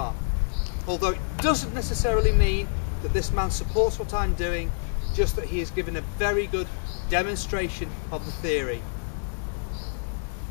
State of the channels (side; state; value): right; silent; digital silence